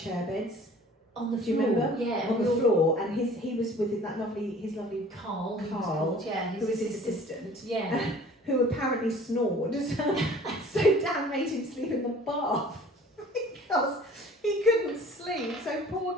beds. On the floor. Do you remember? Yeah. On the floor, and he was with his lovely Carl, who was his assistant. Yeah. Who apparently snored. So Dan made him sleep in the bath. because he couldn't sleep. So poor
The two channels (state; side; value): normal; both; correlation 0.49